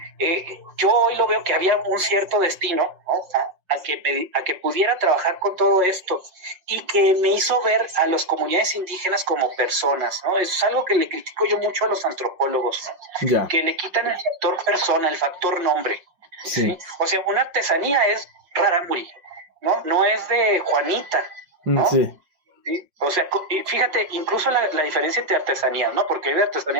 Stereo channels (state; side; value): late; left; 5.5 ms